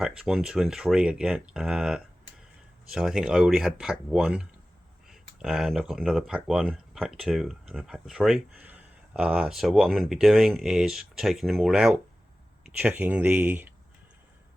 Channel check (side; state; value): both; normal; correlation 0.96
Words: 1, 2 and 3 again. So I think I already had pack 1, and I've got another pack 1, pack 2 and a pack 3. So what I'm going to be doing is taking them all out, checking the